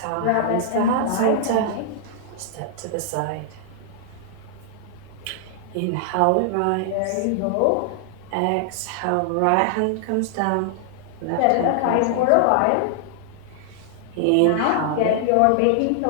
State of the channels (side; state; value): both; different; correlation -0.01